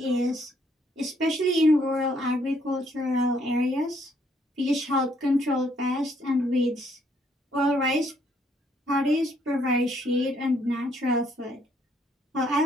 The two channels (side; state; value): both; normal; correlation 0.69